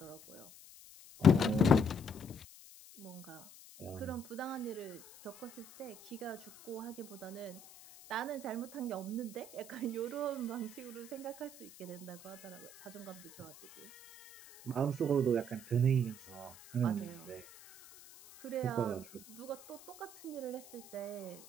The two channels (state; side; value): noise; left; hiss, 19 dB below the sound